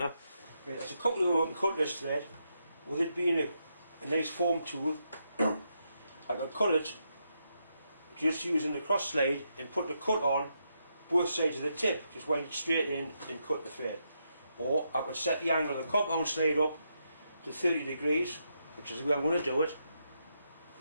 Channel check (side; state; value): both; inverted; correlation -0.82